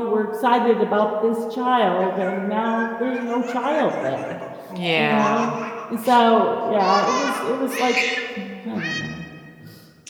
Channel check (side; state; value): both; identical; correlation 1.00